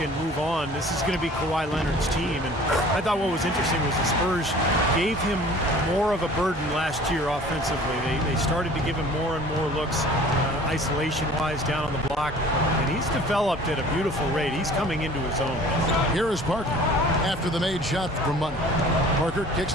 move on. This is going to be Kawhi Leonard's team. And I thought what was interesting was the Spurs gave him more of a burden last year offensively. They started to give him more and more looks isolation-wise down on the block. And he's developed at a beautiful rate. He's coming into his own. Here is Parker after the made shot from Money. Parker kicks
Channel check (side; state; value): both; normal; correlation 0.48